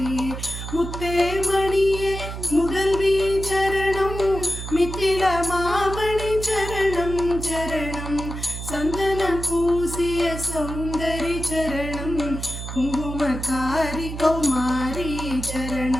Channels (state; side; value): noise; right; hum, 7 dB below the sound